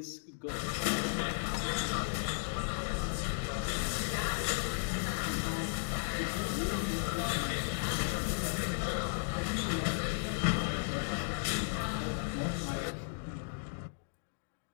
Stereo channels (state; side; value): silent; right; digital silence